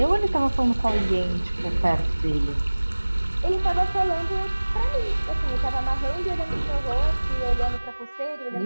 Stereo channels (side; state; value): both; inverted; correlation -1.00